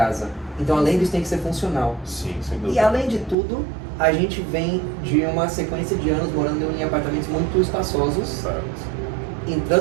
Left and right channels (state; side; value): drops out; left; at 3.4 s